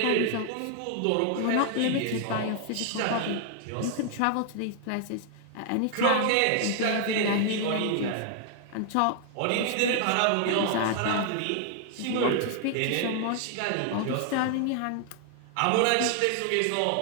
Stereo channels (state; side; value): different; both; correlation 0.00